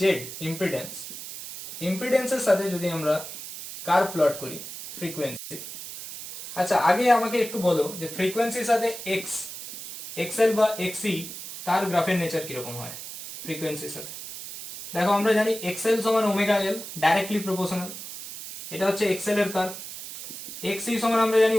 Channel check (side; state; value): right; noise; hiss, 10 dB below the sound